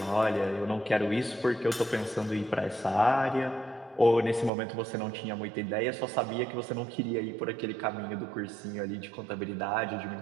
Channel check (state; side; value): drops out; left; at 4.5 s